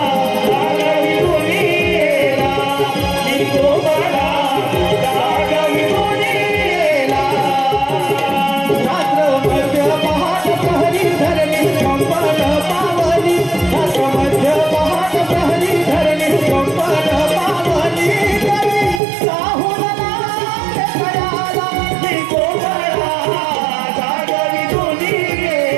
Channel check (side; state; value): left; drops out; at 19.0 s